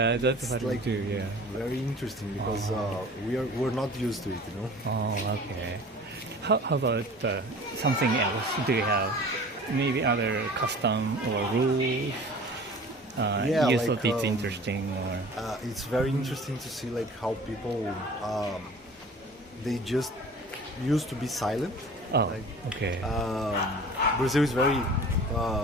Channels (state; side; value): normal; both; correlation 0.43